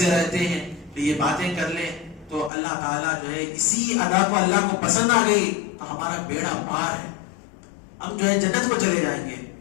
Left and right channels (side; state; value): right; drops out; at 2.5 s